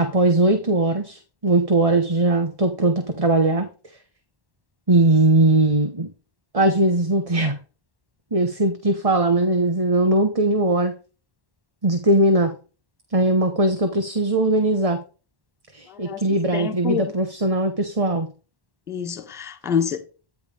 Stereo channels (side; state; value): left; late; 1.1 ms